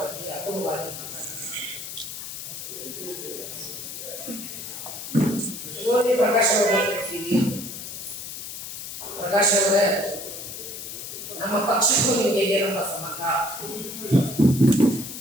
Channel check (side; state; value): left; noise; hiss, 9 dB below the sound